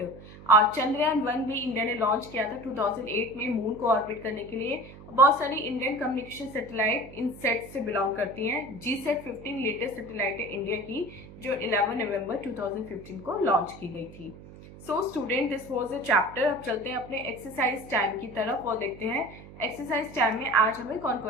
और चंद्रयान-1 भी इंडिया ने लॉन्च किया था 2008 में मून को ऑर्बिट करने के लिए। बहुत सारी इंडियन कम्युनिकेशन सैटेलाइट इन सेट से बिलोंग करती हैं। GSAT-15 लेटेस्ट सैटेलाइट है इंडिया की, जो 11 नवंबर 2015 को लॉन्च की गई थी। So student, this was a chapter. अब चलते हैं अपने एक्सरसाइज टाइम की तरफ और देखते हैं एक्सरसाइज टाइम में आज हमें कौन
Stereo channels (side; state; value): right; noise; hum, 17 dB below the sound